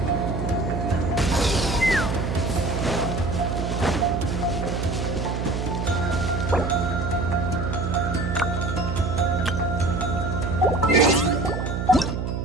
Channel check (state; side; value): noise; right; hum, 2 dB below the sound